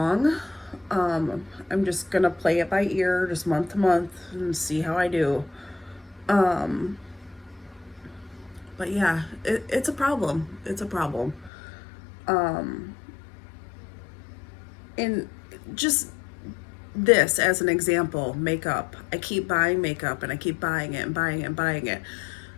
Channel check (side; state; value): right; drops out; at 11.5 s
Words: I'm just going to play it by ear, just month to month, and see how I do. But yeah, it's a problem. It's a problem. And just this as an example, makeup. I keep buying makeup and I keep buying it and buying it and buying it.